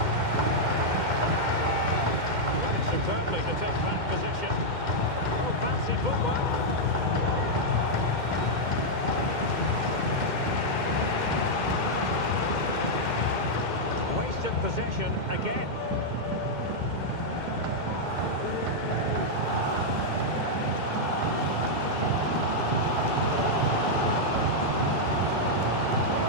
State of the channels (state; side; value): late; left; 2.1 ms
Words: Superbly to take back possession. Oh, fancy footwork. Wasted possession again.